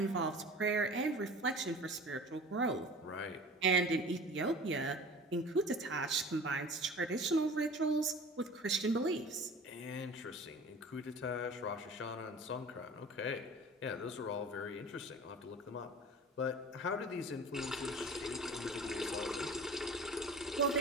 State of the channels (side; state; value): both; normal; correlation 0.41